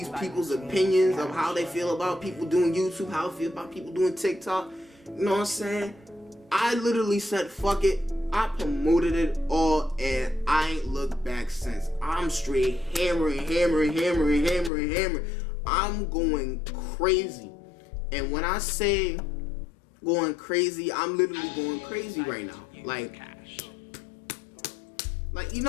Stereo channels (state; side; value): drops out; right; at 14.7 s